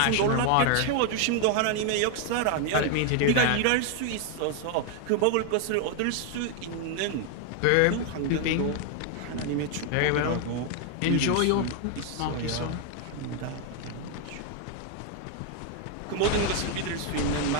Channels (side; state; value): both; different; correlation 0.00